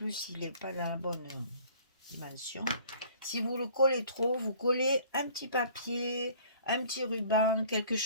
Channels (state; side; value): inverted; both; correlation -0.52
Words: il n'est pas dans la bonne dimension. Si vous le collez trop, vous collez un petit papier, un petit ruban, quelque